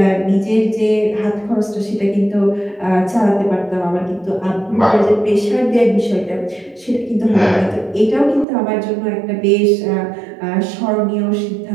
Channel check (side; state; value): left; drops out; at 8.5 s